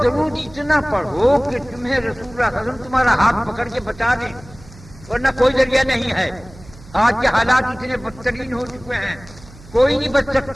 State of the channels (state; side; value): noise; right; hum, 21 dB below the sound